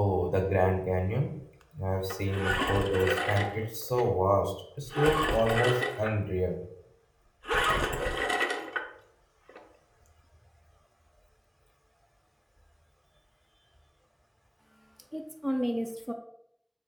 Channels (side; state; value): both; identical; correlation 1.00